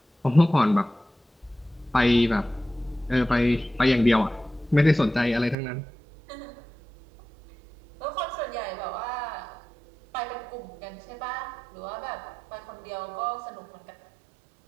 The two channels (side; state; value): left; drops out; at 5.6 s